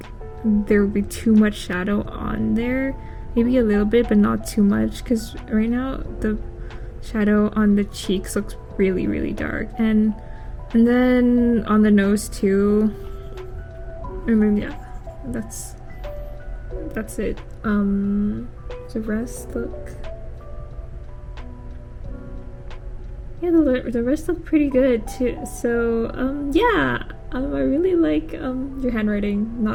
there will be too much shadow on there. Maybe a little bit, but not too much, because right now the shadow on the cheeks looks really, really dark, and then on the nose too. I mean, yeah, that's it. The rest look, yeah, the rest look pretty good too. So yeah. I really like your handwriting,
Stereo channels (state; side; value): identical; both; correlation 1.00